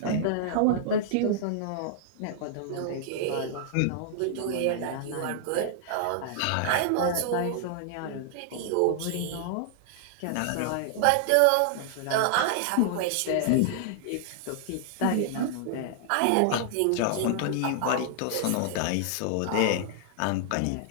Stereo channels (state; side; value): different; both; correlation -0.01